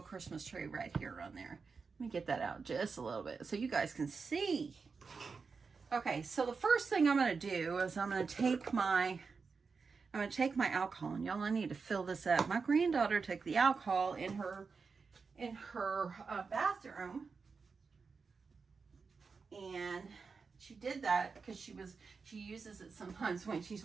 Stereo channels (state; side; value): quieter; left; 4.9 dB